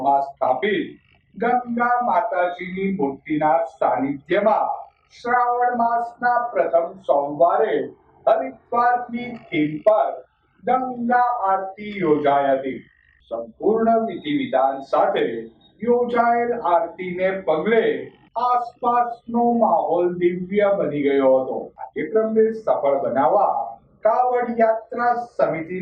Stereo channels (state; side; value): identical; both; correlation 1.00